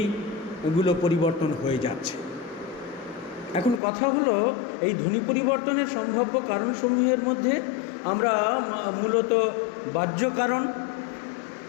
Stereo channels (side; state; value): right; drops out; at 3.8 s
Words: পরিবর্তন হয়ে যাচ্ছে। এখন কথা হলো, এই ধ্বনি পরিবর্তনের সম্ভাব্য কারণসমূহের মধ্যে আমরা মূলত বাহ্য কারণ,